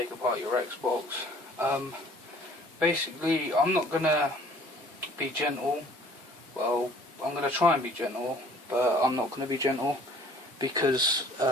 apart your Xbox. Basically, I'm not going to be gentle. Well, I'm going to try and be gentle, but I'm not going to be gentle because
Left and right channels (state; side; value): normal; both; correlation 0.53